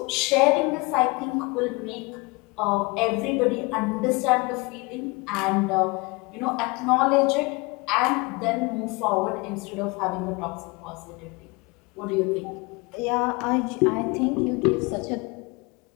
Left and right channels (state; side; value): quieter; right; 26.7 dB